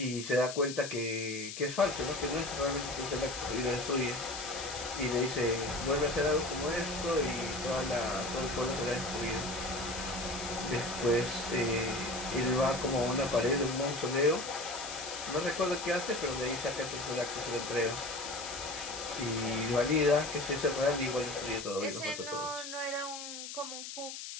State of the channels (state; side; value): noise; left; hiss, 8 dB below the sound